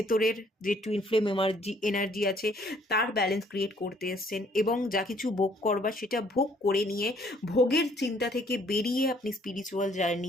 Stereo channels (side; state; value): both; normal; correlation 0.62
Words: যে টুইন ফ্লেম এনার্জি আছে তার ব্যালেন্স ক্রিয়েট করতে এসছেন, এবং যা কিছু ভোগ করবার সেটা ভোগ করে নিয়ে ভোগের চিন্তা থেকে বেরিয়ে আপনি স্পিরিচুয়াল